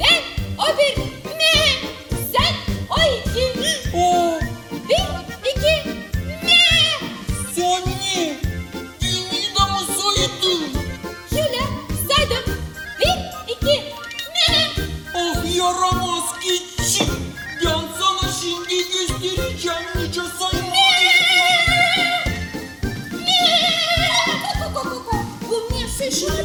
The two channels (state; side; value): identical; both; correlation 1.00